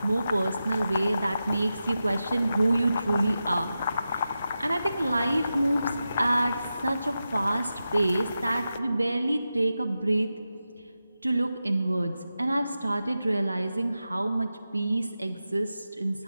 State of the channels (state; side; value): inverted; both; correlation -0.91